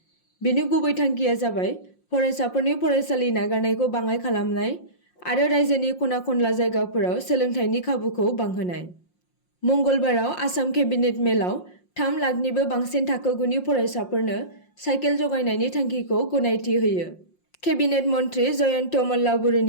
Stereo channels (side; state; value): right; late; 5.6 ms